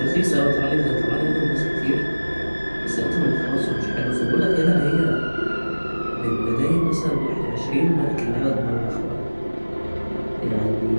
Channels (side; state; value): both; inverted; correlation -1.00